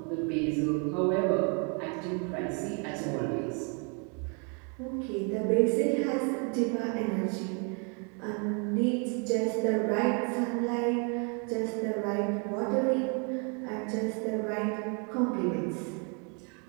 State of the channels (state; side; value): quieter; left; 36.7 dB